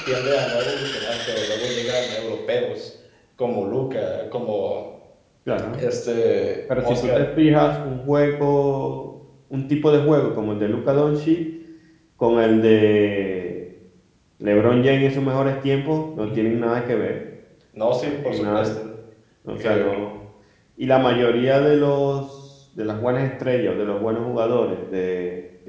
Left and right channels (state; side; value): identical; both; correlation 1.00